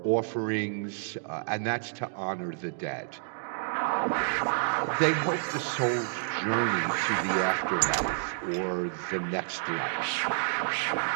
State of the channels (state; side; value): silent; left; digital silence